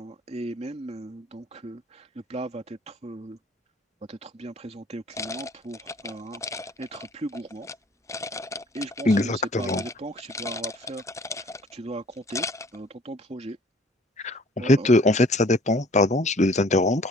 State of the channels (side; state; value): both; normal; correlation 0.54